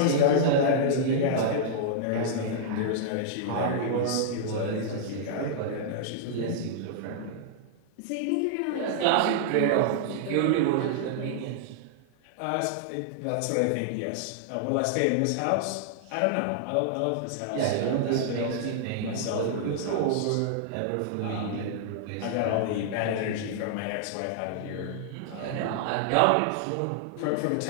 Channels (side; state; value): both; different; correlation -0.01